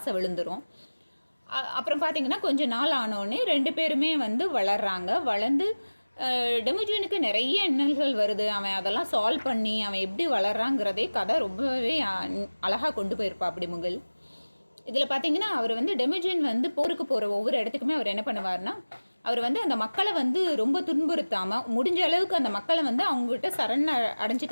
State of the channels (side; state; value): both; inverted; correlation -1.00